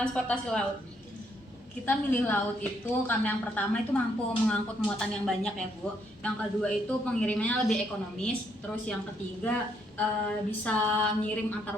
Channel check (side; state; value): both; normal; correlation 0.73